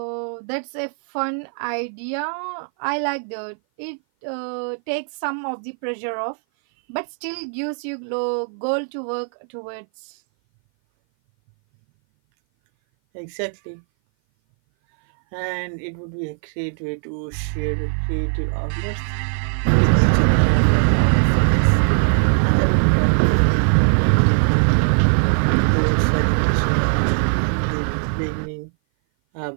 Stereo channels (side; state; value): left; silent; 58 dB below the other